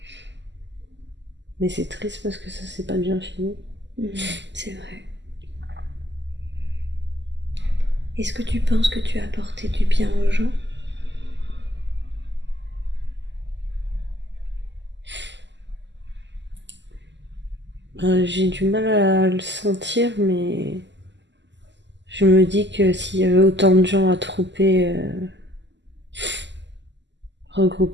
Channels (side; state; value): left; late; 0.52 ms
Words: Mais c'est triste parce que ça s'est pas bien fini. C'est vrai. Est-ce que tu penses que tu as apporté du bien aux gens? J'ai du mal à le sentir, mais je me dis que s'il y avait autant de gens